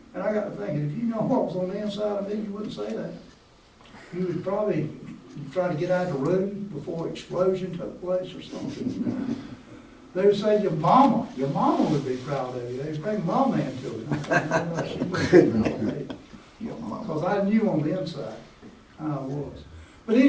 And I got to thinking, if you know what was on the inside of me, you wouldn't say that. You would probably try to get out of the room before explosion took place or something. They would say, your mama would be proud of you. They'd bring mama into it. She wouldn't be proud of me. Because I knew on the inside how I was. But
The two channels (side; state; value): both; identical; correlation 1.00